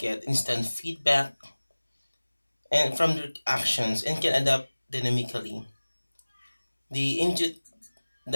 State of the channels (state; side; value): inverted; both; correlation -1.00